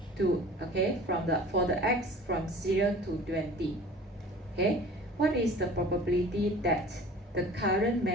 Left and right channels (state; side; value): normal; both; correlation 0.44